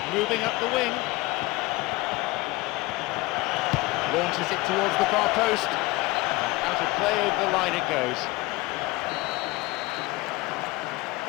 Moving up the wing. Launches it towards the far post. Out of play over the line it goes.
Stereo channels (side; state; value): right; quieter; 21.3 dB